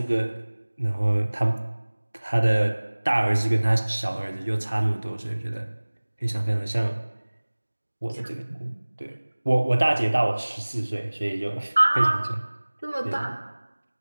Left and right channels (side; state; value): both; inverted; correlation -1.00